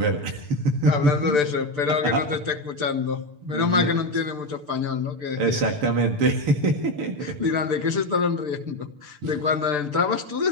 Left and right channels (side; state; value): left; late; 6.8 ms